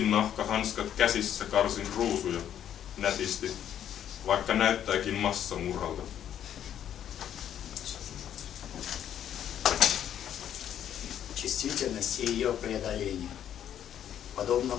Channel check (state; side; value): quieter; right; 10.1 dB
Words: käsissä karsin ruusuja nätisti, vaikka näyttääkin massamurhalta. Чувствительность и ее преодоление. Подобно